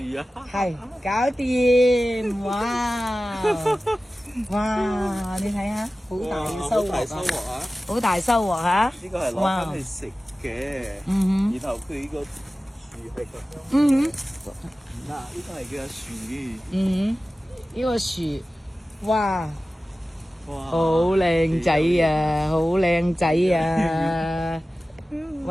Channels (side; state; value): both; normal; correlation 0.96